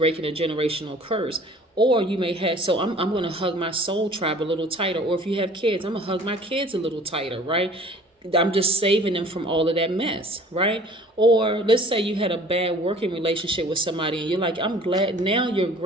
a generational curse. Or you may have, so I'm going to hug my soul tribe a little tighter. Or if you have kids, I'm going to hug my kids a little tighter, right? I'm just saving them from all of that mess, right? Or let's say you had a bad working relationship with somebody and you're like, I'm glad, now you're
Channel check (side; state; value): both; normal; correlation 0.49